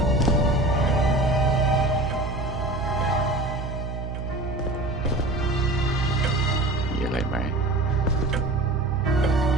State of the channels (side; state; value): right; noise; hum, 6 dB below the sound